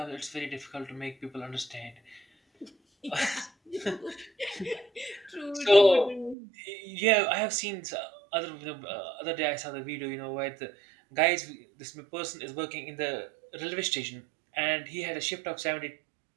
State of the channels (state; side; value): drops out; left; at 6.4 s